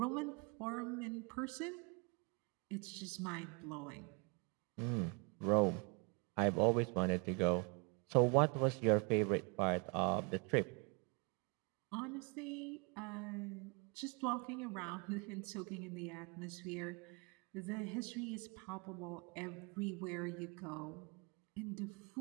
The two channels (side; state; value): left; quieter; 32.4 dB